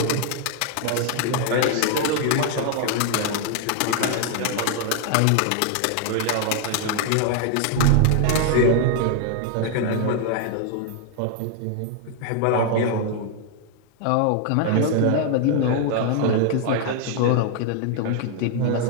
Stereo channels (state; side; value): different; both; correlation 0.00